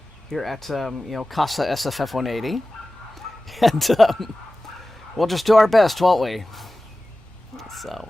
here at, Casa SFF180. And we'll just do our best, won't we? So...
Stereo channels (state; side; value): normal; both; correlation 0.96